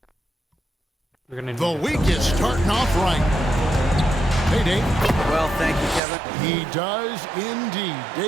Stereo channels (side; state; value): left; drops out; at 6.0 s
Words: The week is starting off right. Hey, Dave. Well, thank you, Kevin. He does indeed.